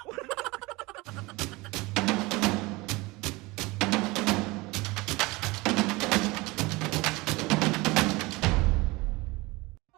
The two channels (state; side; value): quieter; left; 22.9 dB